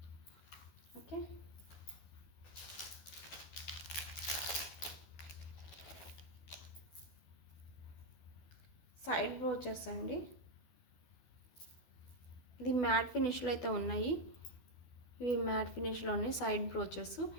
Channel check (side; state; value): right; late; 12 ms